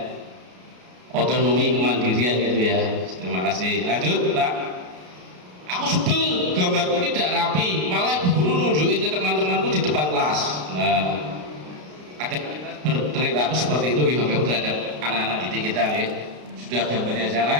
otonomi kemandirian gitu ya. Terima kasih. Lanjut Pak. Aku sebel gambarku tidak rapi, malah ibu guru nunjukin ke teman-temanku di depan kelas. Nah, ada berperilaku seperti itu gitu terhadap anak-anak didik kita ya. Sudah gambarnya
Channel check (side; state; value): left; late; 33 ms